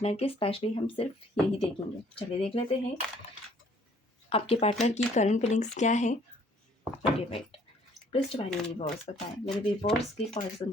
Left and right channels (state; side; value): normal; both; correlation 0.60